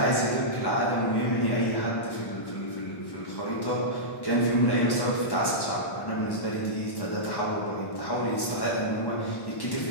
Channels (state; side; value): late; right; 1.1 ms